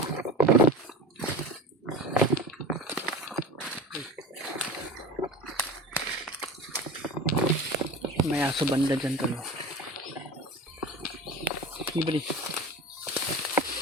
May aso banda dyan tulo. Libre.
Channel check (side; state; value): both; normal; correlation 0.33